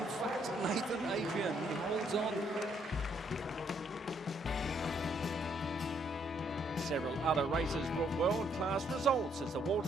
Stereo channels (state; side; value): normal; both; correlation 0.71